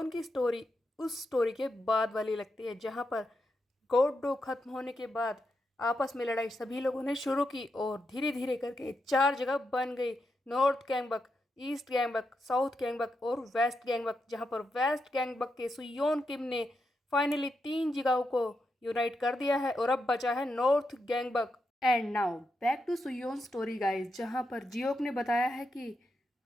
की स्टोरी उस स्टोरी के बाद वाली लगती है, जहाँ पर गोड डॉग खत्म होने के बाद आपस में लड़ाई सभी लोगों ने शुरू की और धीरे धीरे करके 4 जगह बन गई, नॉर्थ गैंगबक, ईस्ट गैंगबक, साउथ गैंगबक और वेस्ट गैंगबक। जहाँ पर वेस्ट गैंगबक के सुयोन किम ने फाइनली 3 जगहों को यूनाइट कर दिया है और अब बचा है north Gyeongbuk. And now back to Suyeon story guys, जहाँ पर जियोक ने बताया है कि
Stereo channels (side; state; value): both; normal; correlation 0.85